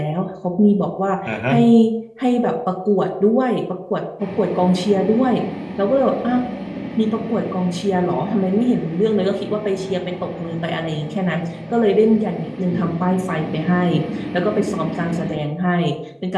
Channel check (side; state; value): both; identical; correlation 1.00